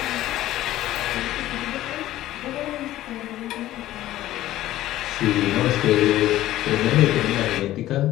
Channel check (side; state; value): right; quieter; 14.6 dB